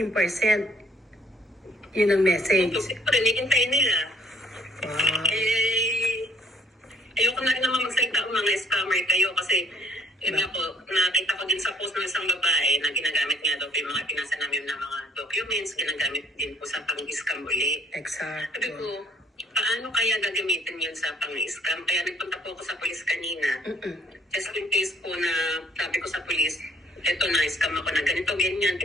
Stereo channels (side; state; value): both; normal; correlation 0.62